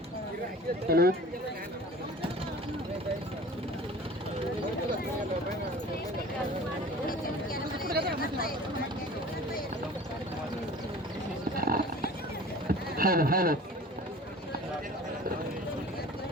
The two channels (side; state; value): both; normal; correlation 0.42